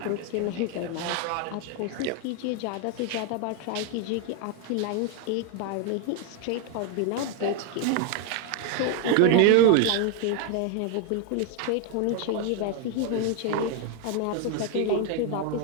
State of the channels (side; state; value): both; different; correlation 0.01